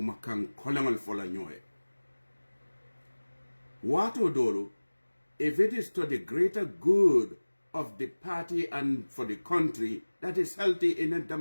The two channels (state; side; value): inverted; both; correlation -1.00